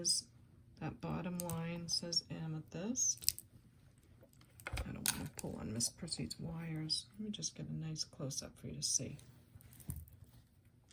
That bottom line says amethyst. I don't want to pull on Miss Prissy's wires. Let me just get a nice close-up for you to see.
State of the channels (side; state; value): both; identical; correlation 1.00